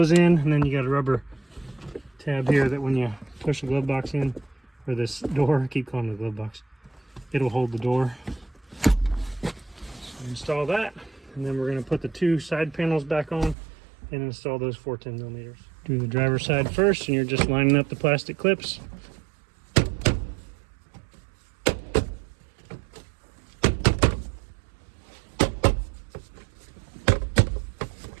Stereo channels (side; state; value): left; drops out; at 13.6 s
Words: in, and then you got a rubber tab here that when you push the glove box in, or this door, I keep calling it the glove box, it'll hold the door. So install that, and then we're going to put the 2 side panels back on and install those 4 10mm. Do the driver's side first, and you're just lining up the plastic clips.